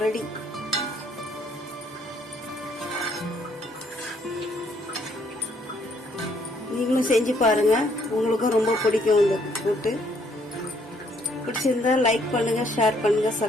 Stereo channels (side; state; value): both; normal; correlation 0.67